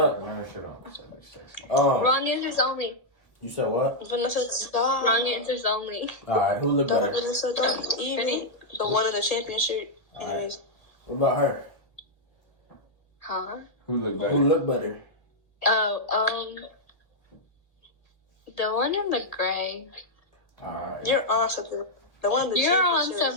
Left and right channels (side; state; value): right; late; 1.2 ms